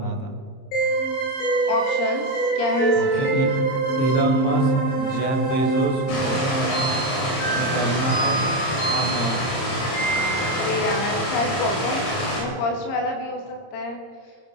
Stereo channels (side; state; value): right; late; 30 ms